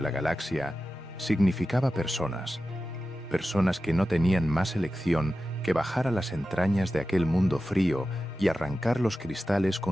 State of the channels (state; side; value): normal; both; correlation 0.93